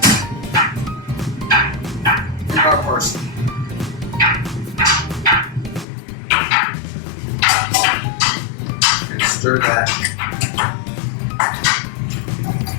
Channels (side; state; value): right; drops out; at 5.9 s